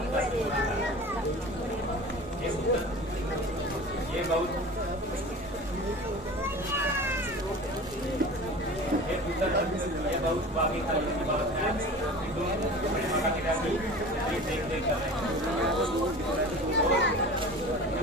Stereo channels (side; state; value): both; normal; correlation 0.37